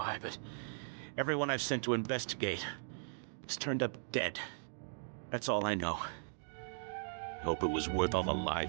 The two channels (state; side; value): silent; left; digital silence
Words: but everyone I've sent to investigate has turned up dead. That's all I know. I hope it was worth all the